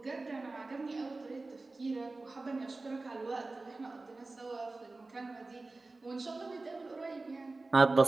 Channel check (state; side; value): quieter; left; 3.3 dB